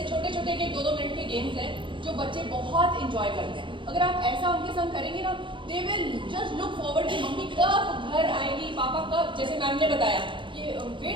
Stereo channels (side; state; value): left; late; 0.24 ms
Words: छोटे छोटे के 2-2 मिनट के गेम्स हैं जो बच्चे बहुत इंजॉय करते हैं। अगर आप ऐसा उनके संग करेंगे ना, they will just look forward कि मम्मी कब घर आएगी, पापा कब, जैसे मैम ने बताया कि